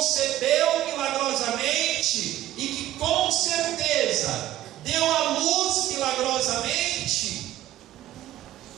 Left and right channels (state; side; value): quieter; left; 14.0 dB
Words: milagrosamente e que com certeza deu à luz milagrosamente.